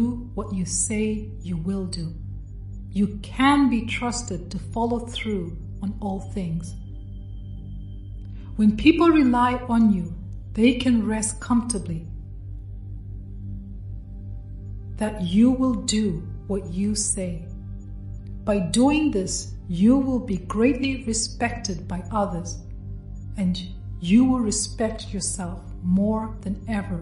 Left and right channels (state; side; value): identical; both; correlation 1.00